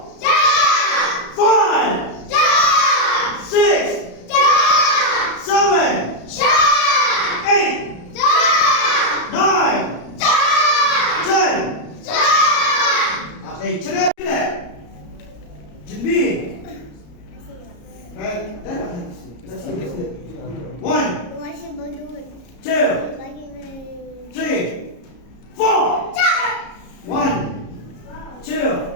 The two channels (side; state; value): right; late; 34 ms